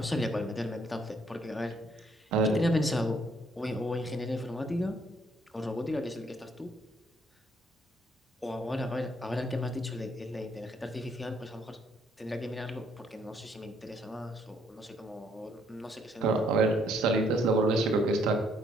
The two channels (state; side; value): normal; both; correlation 0.67